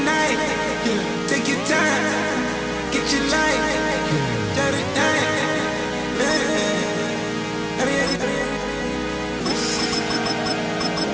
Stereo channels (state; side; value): identical; both; correlation 1.00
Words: night. Take your time, get your life. Jot it down.